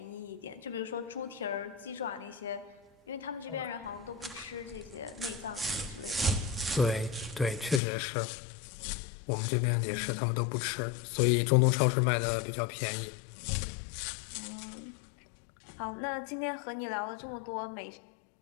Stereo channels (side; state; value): right; drops out; at 7.8 s